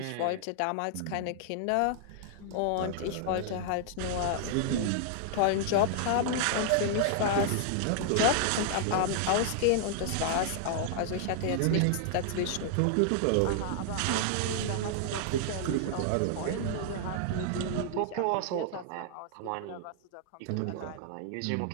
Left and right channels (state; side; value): different; both; correlation -0.01